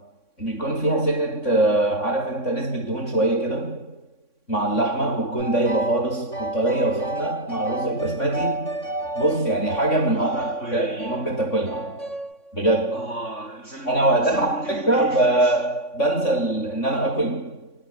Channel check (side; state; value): right; late; 3.6 ms